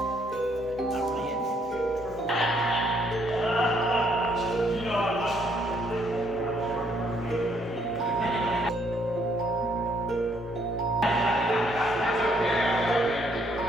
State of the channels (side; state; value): both; normal; correlation 0.69